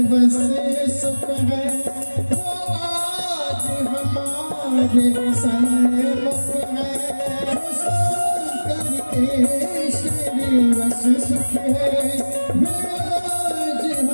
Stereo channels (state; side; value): inverted; both; correlation -1.00